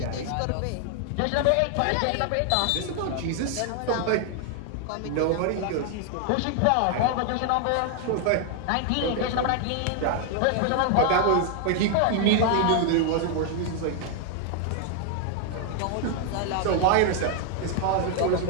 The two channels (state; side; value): different; both; correlation 0.00